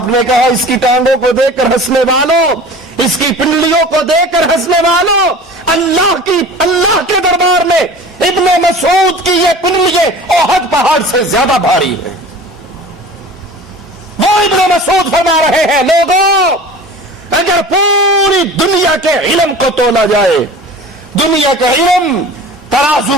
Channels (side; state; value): both; normal; correlation 0.40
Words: نے کہا اس کی ٹانگوں کو دیکھ کر ہنسنے والوں، اس کی پنڈلیوں کو دیکھ کر ہنسنے والوں، اللہ کے دربار میں ابن مسعود کی یہ پنڈلیاں احد پہاڑ سے زیادہ بھاری ہیں۔ وہ ابن مسعود فرما رہے ہیں لوگوں اگر پوری دنیا کے علم کو تولا جائے، دنیا کا علم